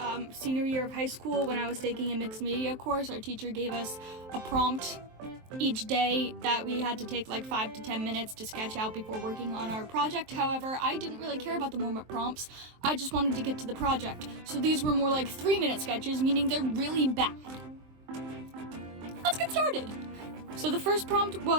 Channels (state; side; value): late; left; 23 ms